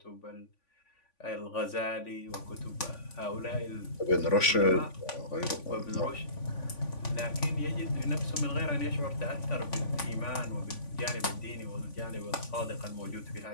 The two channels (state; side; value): late; right; 3.5 ms